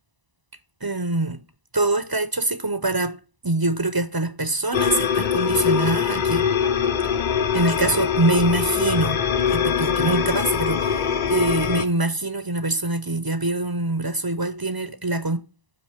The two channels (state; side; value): late; left; 1.0 ms